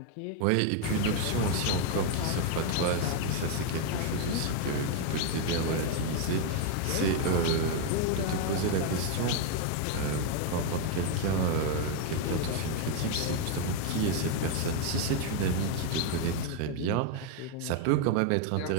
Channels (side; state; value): both; different; correlation 0.01